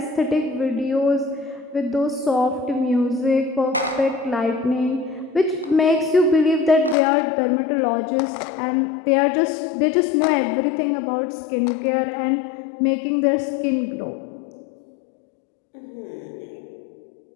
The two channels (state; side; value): drops out; right; at 7.0 s